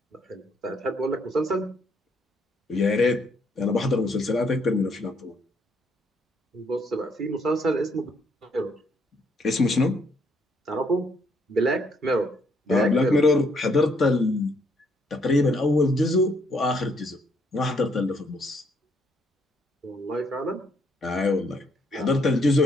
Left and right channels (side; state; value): both; normal; correlation 0.70